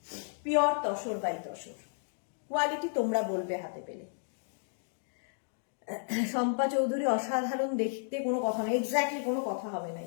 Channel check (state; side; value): silent; right; digital silence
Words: pure tussar by tussar, quality তোমরা বলবে হাতে পেলে। শম্পা চৌধুরী অসাধারণ দেখতে, কোনো কথা নেই, এক্স্যাক্টলি কোনো কথা হবে না।